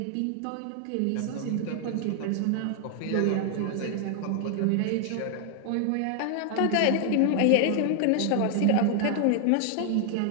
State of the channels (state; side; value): different; both; correlation 0.00